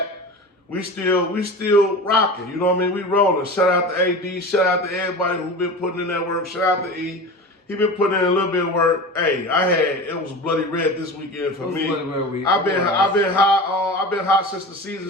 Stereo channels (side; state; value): both; normal; correlation 0.31